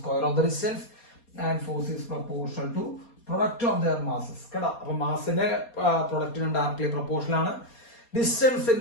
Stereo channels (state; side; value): late; right; 4.2 ms